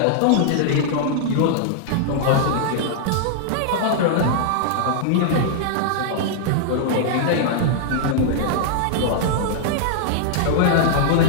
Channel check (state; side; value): different; both; correlation -0.01